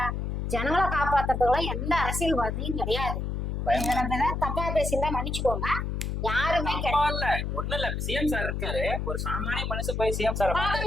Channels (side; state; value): left; noise; hum, 2 dB below the sound